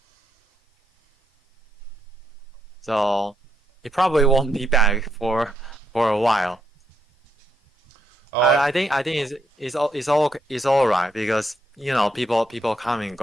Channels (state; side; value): normal; both; correlation 0.77